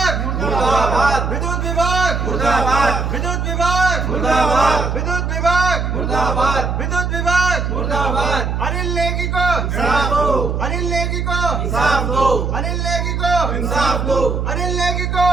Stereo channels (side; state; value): right; noise; hum, 1 dB below the sound